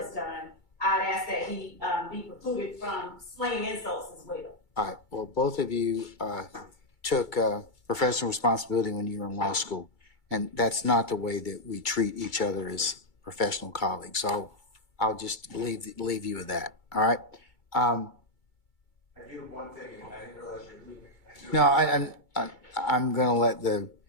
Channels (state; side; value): late; right; 2.3 ms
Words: done. I'd ask that he be precluded from slinging insults as well. All right. Well, both of you took professional responsibility when you were in law school, and that's not the way that we treat each other as professional colleagues. So I'll just leave you with that. All right. I do one thing, and I didn't realize you're leaving. No, I'm going to